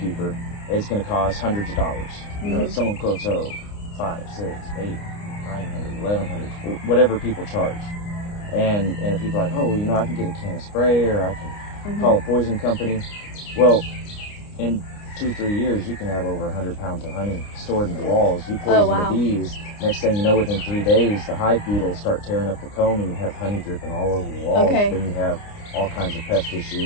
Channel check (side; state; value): right; late; 29 ms